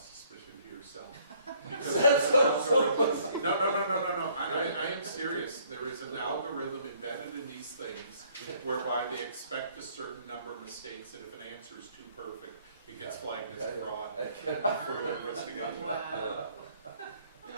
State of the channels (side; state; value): both; inverted; correlation -0.62